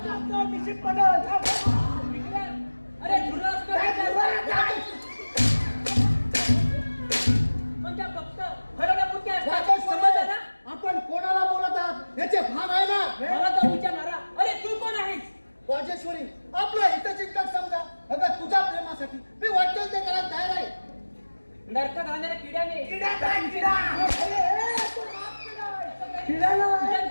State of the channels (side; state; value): both; inverted; correlation -1.00